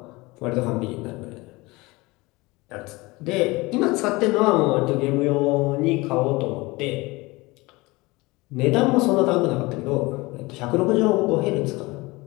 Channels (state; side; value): quieter; right; 22.7 dB